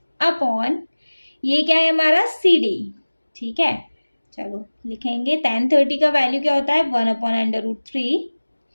अपॉन ये क्या है हमारा CD, ठीक है। चलो लिखेंगे tan 30 का वैल्यू क्या होता है 1 upon √3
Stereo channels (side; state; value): both; inverted; correlation -1.00